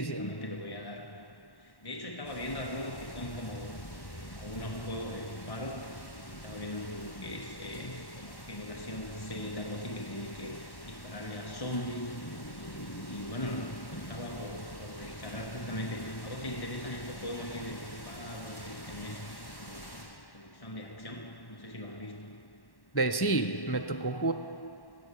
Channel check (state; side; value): late; right; 1.1 ms